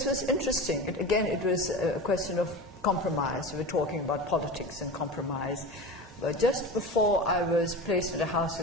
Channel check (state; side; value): normal; both; correlation 0.29